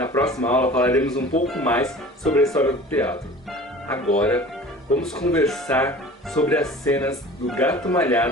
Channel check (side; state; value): both; normal; correlation 0.42